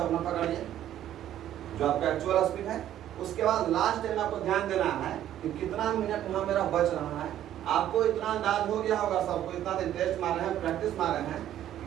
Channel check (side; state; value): left; quieter; 11.7 dB